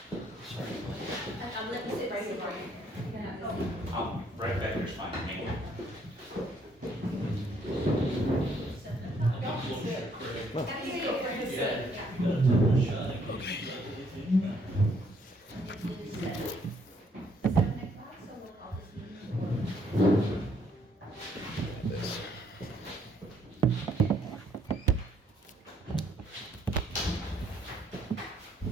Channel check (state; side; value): normal; both; correlation 0.68